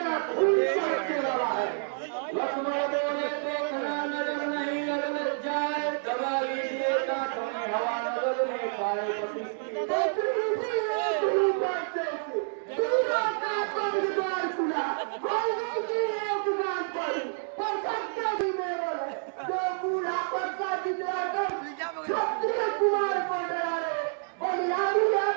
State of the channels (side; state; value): left; silent; digital silence